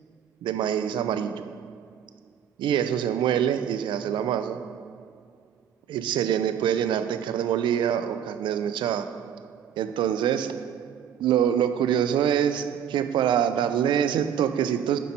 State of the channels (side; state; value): left; quieter; 9.1 dB